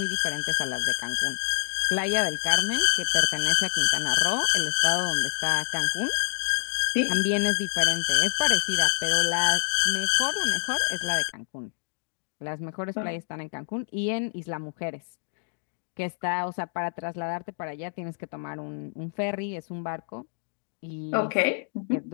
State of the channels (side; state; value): right; silent; digital silence